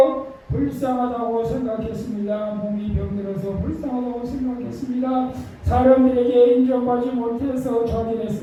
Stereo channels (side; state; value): both; identical; correlation 1.00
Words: 불쌍하다고 생각했습니다. 몸이 병들어서 불쌍하다고 생각했습니다. 사람들에게 인정받지 못해서